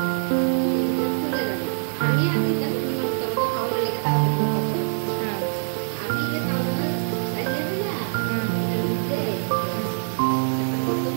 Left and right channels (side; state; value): left; silent; digital silence